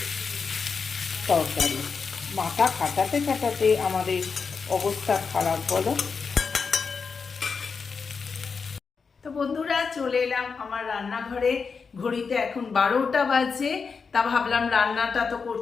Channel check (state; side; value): quieter; right; 5.3 dB